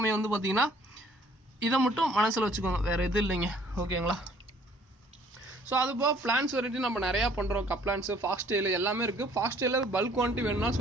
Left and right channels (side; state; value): both; normal; correlation 0.58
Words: வந்து பார்த்திங்கன்னா இதை மட்டும் மனசில் வச்சுக்கோங்க, வேறு எதுவும் இல்லைங்க. ஓகேங்களா, ஸோ அது போக பிளான்ஸ் வெரைட்டி நம்ம நிறையா பண்ணுறோம். கப்ளான்ஸு, ஃபாக்ஸ் டெயில் எல்லாமே இருக்குது. ஃபாக்ஸ் டெயிலில் பல்க் குவான்டிட்டி வேணும்னா